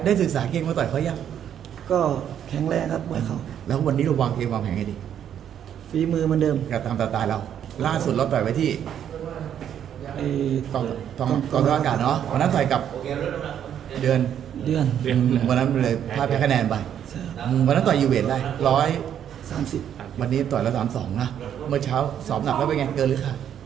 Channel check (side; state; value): left; quieter; 9.5 dB